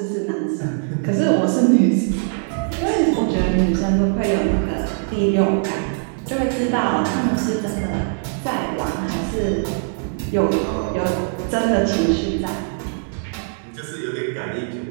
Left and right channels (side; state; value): left; silent; digital silence